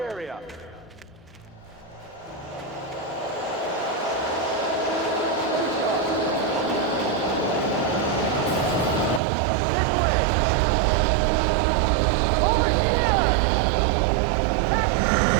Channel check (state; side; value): drops out; left; at 9.2 s